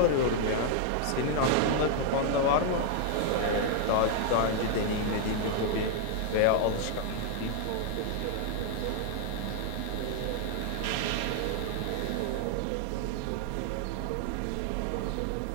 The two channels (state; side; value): different; both; correlation 0.00